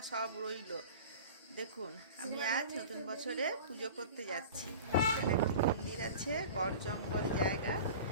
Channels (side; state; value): both; inverted; correlation -0.37